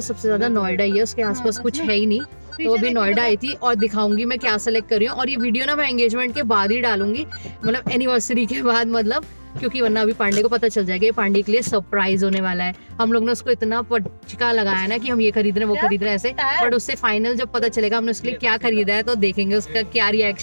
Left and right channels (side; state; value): both; inverted; correlation -1.00